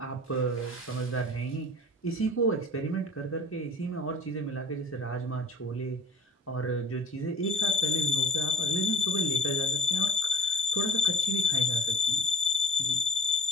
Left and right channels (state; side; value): normal; both; correlation 0.45